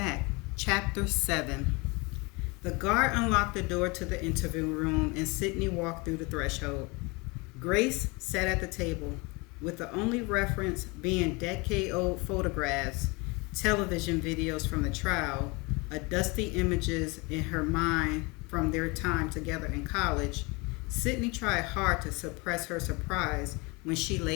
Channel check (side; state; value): right; quieter; 27.3 dB